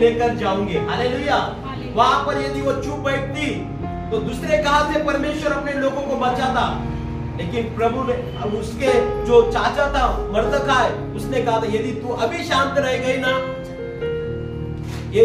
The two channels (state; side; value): identical; both; correlation 1.00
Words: जाऊंगी। हालेलुया। वहां पर यदि वो चुप बैठती तो दूसरे कहां से परमेश्वर अपने लोगों को बचाता? लेकिन प्रभु ने, उसके जो चाचा था मर्दखाय, उसने कहा था यदि तू अभी शांत रह गई ना,